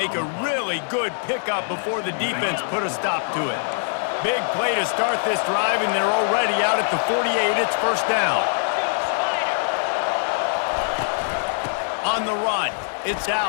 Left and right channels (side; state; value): right; silent; digital silence